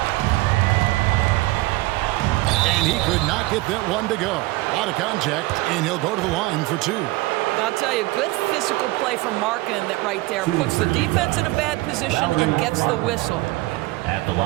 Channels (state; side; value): quieter; left; 20.5 dB